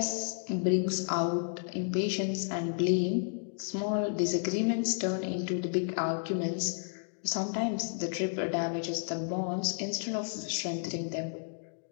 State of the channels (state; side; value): silent; right; digital silence